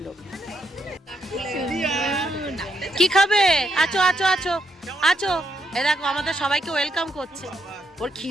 লোক। কি খাবে? আছো আছো আছো আছো, এ দেখো আমাদের সবাইকে ওয়েলকাম করছে। ওর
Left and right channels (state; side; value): normal; both; correlation 0.78